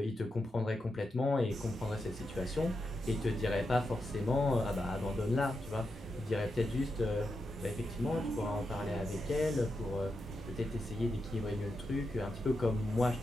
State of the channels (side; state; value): both; normal; correlation 0.86